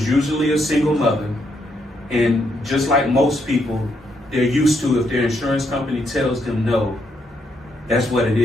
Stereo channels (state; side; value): normal; both; correlation 0.77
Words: usually a single mother, and just like most people, they're used to if their insurance company tells them no, that's what it